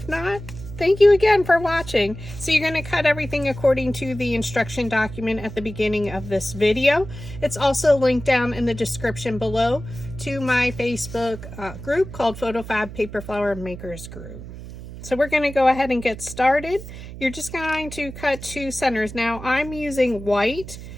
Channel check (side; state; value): right; noise; hum, 12 dB below the sound